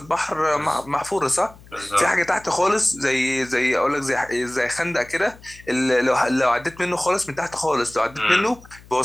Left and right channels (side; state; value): left; noise; hum, 23 dB below the sound